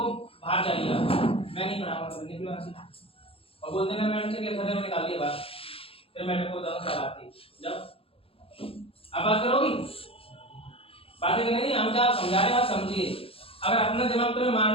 बाहर जाइएगा मैं नहीं पढ़ाऊंगा तो निकलो यहाँ से और बोल देना मैडम से कि सर ने निकाल दिया बात फिर मैडम को बताऊँ क्या बात थी जाओ आप बात करोगी बातें करनी नहीं हम क्या समझा रहे हैं आप समझिए अगर अपना दिमाग तुम्हें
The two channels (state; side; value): late; right; 0.27 ms